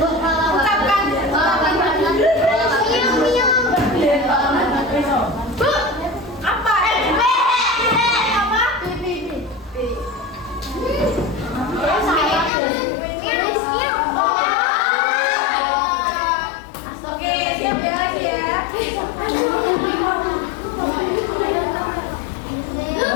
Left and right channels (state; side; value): drops out; right; at 12.5 s